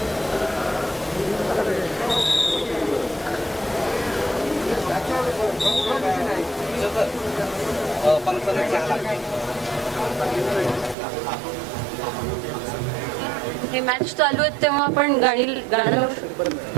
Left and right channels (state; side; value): drops out; left; at 11.0 s